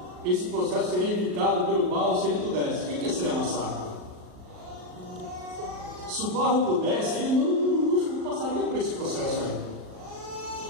Esse processo seria evitado pelo barro se ele pudesse. O que é ser amassado? Se o barro pudesse, ele não passaria por esse processo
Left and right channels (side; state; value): left; late; 38 ms